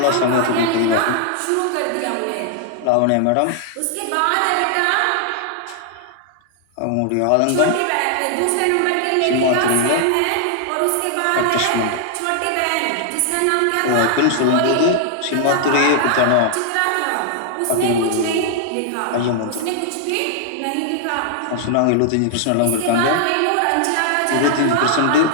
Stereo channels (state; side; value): different; both; correlation 0.00